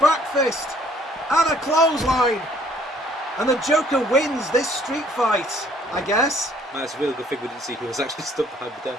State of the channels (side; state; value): both; normal; correlation 0.60